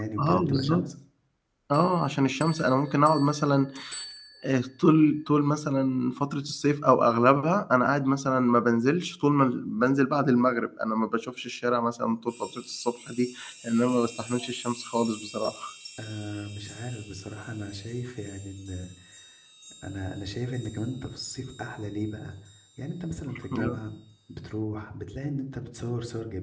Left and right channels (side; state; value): both; identical; correlation 1.00